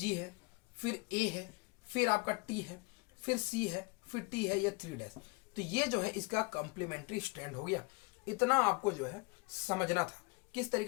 है, फिर ए है, फिर आपका टी है, फिर सी है, फिर टी है, ये 3 डैश। तो ये जो है इसका कॉम्प्लीमेंट्री स्ट्रैंड हो गया। इतना आपको जो है समझना था किस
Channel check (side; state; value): right; quieter; 28.0 dB